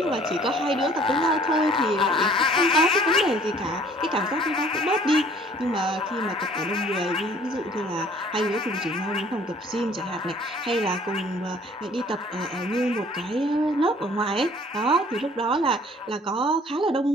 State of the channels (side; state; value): both; normal; correlation 0.55